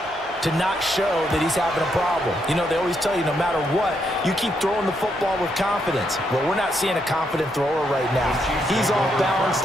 to not show that he's having a problem. You know, they always tell you no matter what, you keep throwing the football with confidence. Well, we're not seeing a confident thrower right now. He's off balance,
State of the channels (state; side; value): normal; both; correlation 0.78